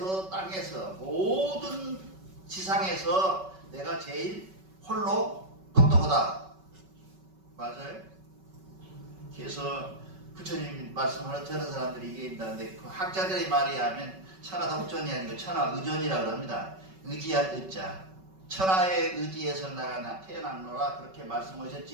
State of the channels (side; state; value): left; late; 5.3 ms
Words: 땅에서 모든 지상에서 내가 제일 홀로 똑똑하다. 맞아요? 그래서 부처님 말씀하는 저런 사람들이 얘기한다는데 그 학자들의 말에 하면 천하독전이 아니고 천하의존이라고 합니다. 의지할 의자. 천하의 의지에서 나가 태어났노라 그렇게